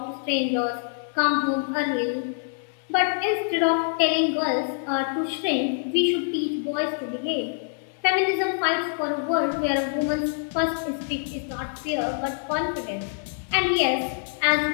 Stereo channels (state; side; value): silent; right; 61 dB below the other